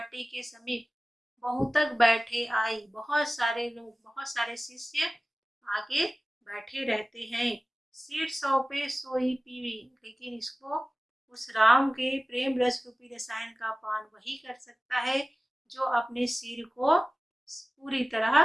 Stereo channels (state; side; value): normal; both; correlation 0.97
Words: के समीप बहुतक बैठे आई, बहुत सारे लोग, बहुत सारे शिष्य आगे बैठे रहते हैं। सिर सौंपे सोई पीवी, लेकिन इसको उस राम के प्रेम रस रूपी रसायन का पान वही कर सकता है जो अपने सिर को पूरी